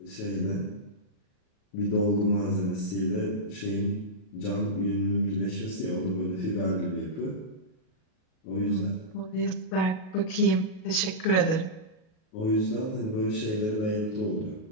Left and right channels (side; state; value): right; late; 38 ms